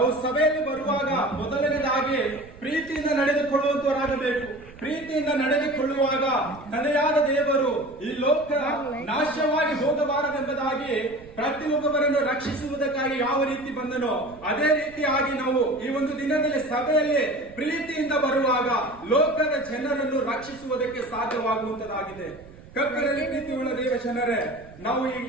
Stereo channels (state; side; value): noise; right; rumble, 21 dB below the sound